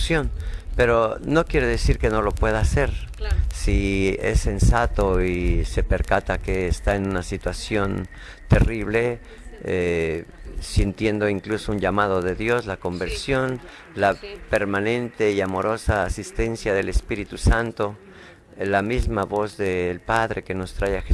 pero no quiere decir que no lo pueda hacer. Claro. Si es sensato y se percata que está en una situación terrible, sintiendo incluso un llamado de Dios, la conversión, la permanente y amorosa asistencia del Espíritu Santo, la misma voz del Padre que nos trae a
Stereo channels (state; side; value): identical; both; correlation 1.00